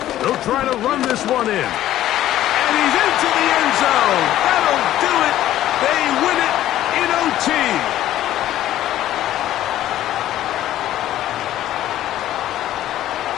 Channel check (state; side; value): quieter; right; 13.2 dB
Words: They'll try to run this one in. And he's into the end zone. That'll do it. They win it in OT.